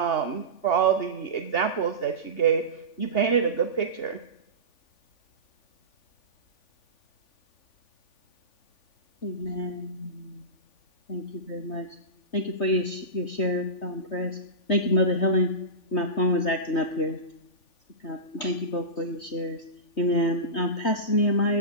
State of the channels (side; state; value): right; late; 3.5 ms